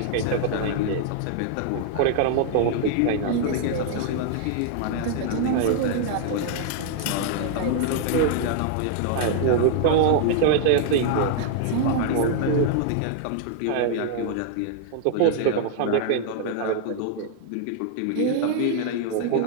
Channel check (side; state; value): both; different; correlation 0.00